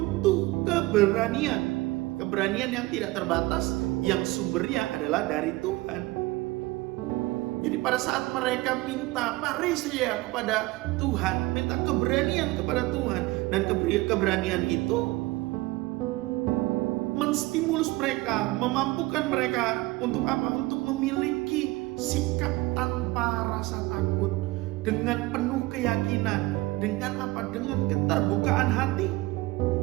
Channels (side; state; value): left; quieter; 20.4 dB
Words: keberanian. Keberanian yang tidak terbatas, yang sumbernya adalah dari Tuhan. Jadi pada saat mereka minta paresia kepada Tuhan, minta keberanian kepada Tuhan, dan keberanian itu menstimulus mereka, memampukan mereka untuk apa? Untuk memiliki sikap tanpa rasa takut, dengan penuh keyakinan, dengan apa? Dengan keterbukaan hati.